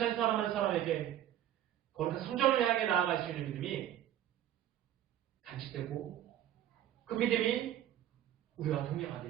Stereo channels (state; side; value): quieter; left; 11.6 dB